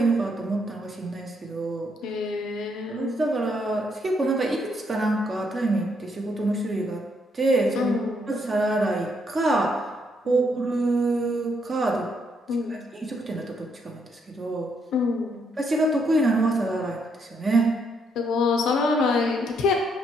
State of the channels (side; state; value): both; normal; correlation 0.74